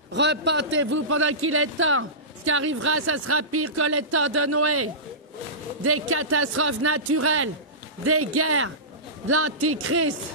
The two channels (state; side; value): normal; both; correlation -0.20